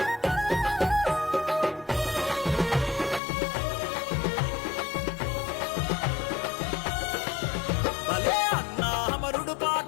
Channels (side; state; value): right; drops out; at 3.2 s